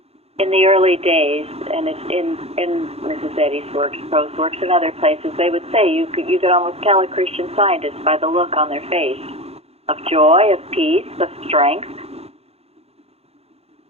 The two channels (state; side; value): late; left; 0.29 ms